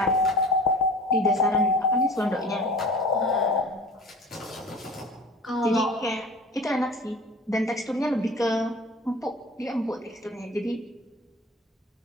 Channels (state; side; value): normal; both; correlation 0.41